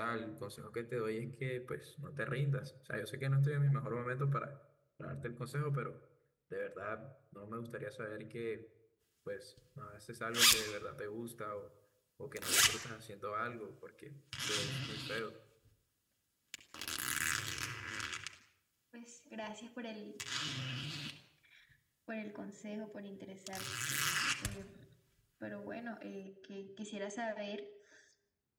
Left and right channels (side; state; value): both; identical; correlation 1.00